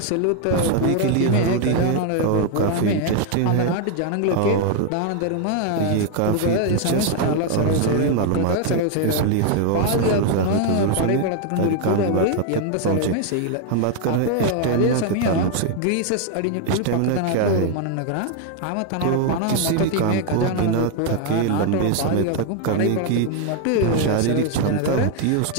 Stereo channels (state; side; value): different; both; correlation 0.00